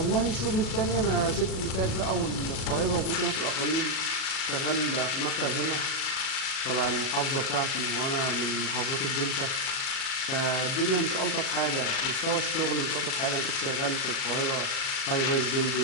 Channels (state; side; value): late; right; 37 ms